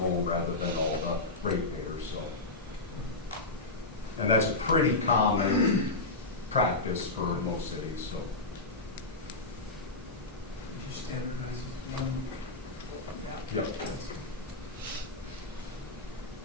home rather than all the ratepayers. So, and that's a pretty common practice for most cities. So. Yep.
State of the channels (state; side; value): quieter; right; 3.2 dB